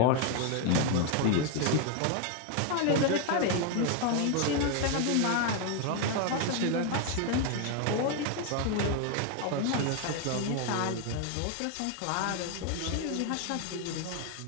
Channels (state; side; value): different; both; correlation 0.01